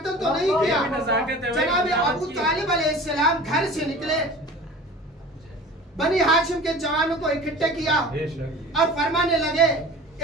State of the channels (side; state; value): both; normal; correlation 0.40